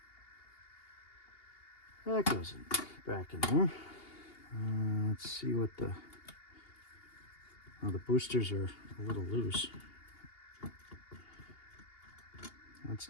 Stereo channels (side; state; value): right; late; 2.8 ms